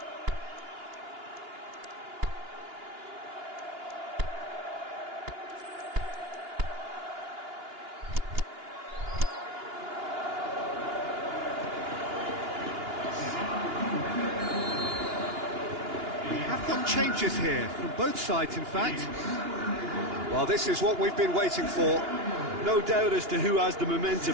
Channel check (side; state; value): left; late; 2.9 ms